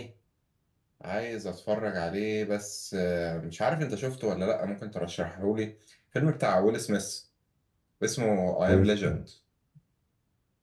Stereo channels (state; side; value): identical; both; correlation 1.00